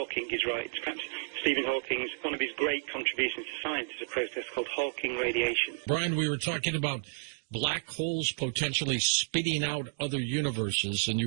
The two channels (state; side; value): silent; left; digital silence